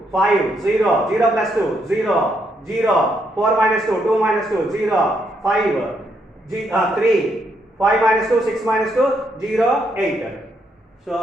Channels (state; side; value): normal; both; correlation 0.76